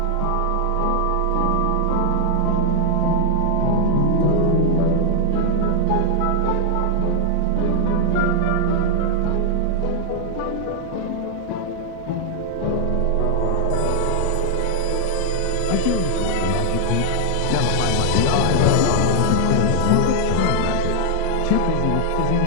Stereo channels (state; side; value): different; both; correlation 0.00